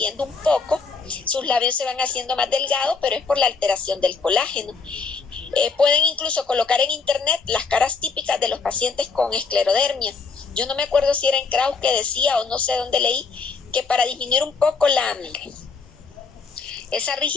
un poco, sus labios se van haciendo más delgados, pero es por la alteración del colágeno. Pueden incluso colocar en internet las caras típicas de los pacientes con esclerodermia. Yo no me acuerdo si era en Krauss que decía, o no sé dónde leí, que para disminuir un poco esa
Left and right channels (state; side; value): quieter; right; 4.8 dB